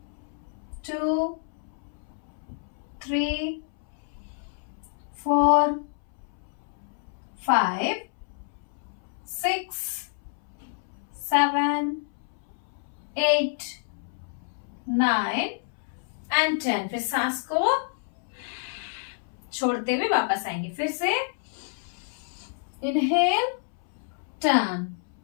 2 3 4 5 6 7 8 9 एंड 10। फिर सांस को छोड़ते हुए वापस आएंगे। फिर से इनहेल, टर्न,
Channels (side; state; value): right; silent; 59 dB below the other